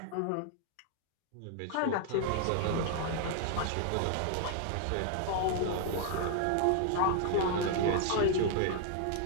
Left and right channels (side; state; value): both; different; correlation 0.00